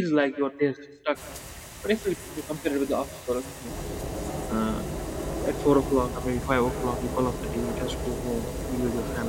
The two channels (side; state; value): both; identical; correlation 1.00